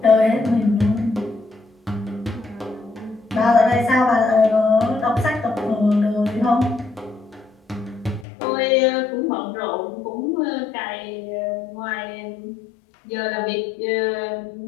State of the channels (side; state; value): right; drops out; at 8.2 s